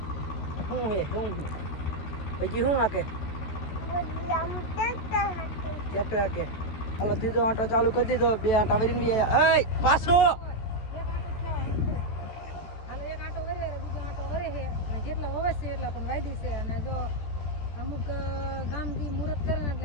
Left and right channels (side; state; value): right; late; 14 ms